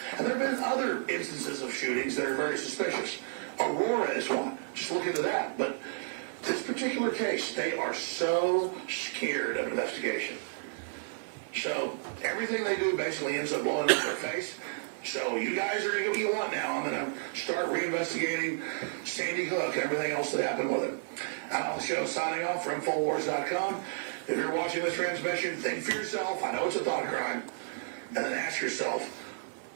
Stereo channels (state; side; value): silent; left; digital silence